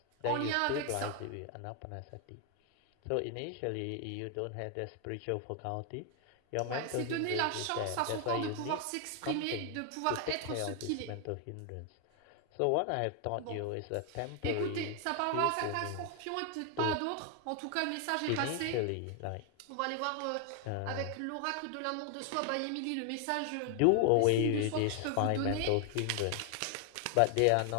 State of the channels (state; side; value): different; both; correlation 0.00